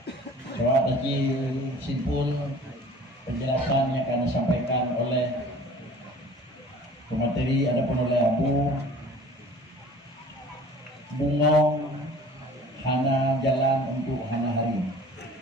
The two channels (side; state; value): both; normal; correlation 0.46